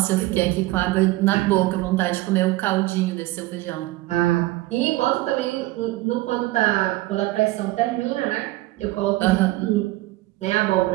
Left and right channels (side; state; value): left; quieter; 18.5 dB